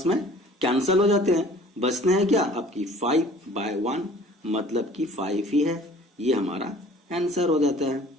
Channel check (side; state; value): both; normal; correlation 0.50